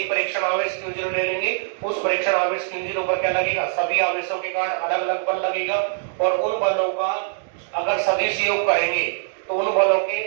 परीक्षण आवेश Q0 ले लेंगे। उस परीक्षण आवेश Q0 पर क्या लगेगा? सभी आवेशों के कारण अलग अलग बल लगेगा, और उन बलों का अगर सदिश योग करेंगे तो उन बलों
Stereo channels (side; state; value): left; silent; digital silence